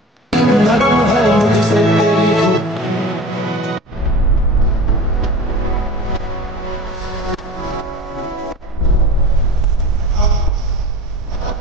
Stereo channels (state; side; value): normal; both; correlation 0.37